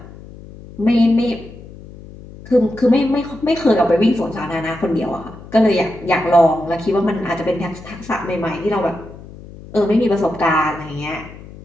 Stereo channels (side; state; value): left; noise; hum, 17 dB below the sound